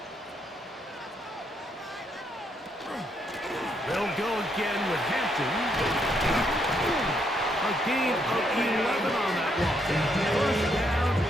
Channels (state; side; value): normal; both; correlation 0.75